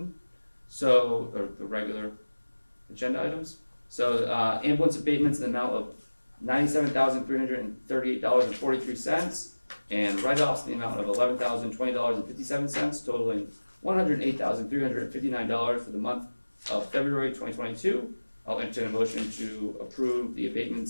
So, or the regular agenda items. So ambulance abatements in the amount of $97,338.43 and write-offs in the amount of $11,020.57, totaling $108,359 for the month of February 2022. I'll entertain a motion to approve the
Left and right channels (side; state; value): both; inverted; correlation -1.00